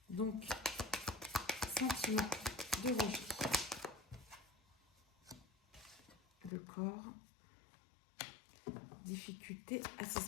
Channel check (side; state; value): right; drops out; at 6.5 s